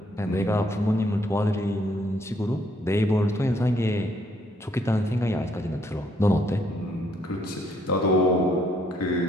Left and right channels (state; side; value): normal; both; correlation 0.69